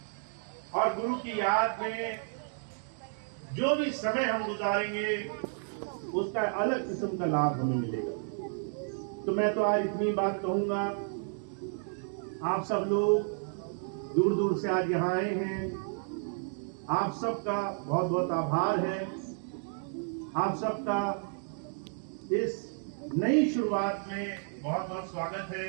और गुरु की याद में जो भी समय हम गुजारेंगे, उसका अलग किस्म का लाभ हमें मिलेगा। तो मैं तो आज इतनी बात कहूंगा, आप सब लोग दूर दूर से आज यहाँ आए हैं, आप सबका बहुत बहुत आभार है। आप सबका इस नई शुरुआत में बहुत बहुत स्वागत है।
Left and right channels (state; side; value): silent; left; 57 dB below the other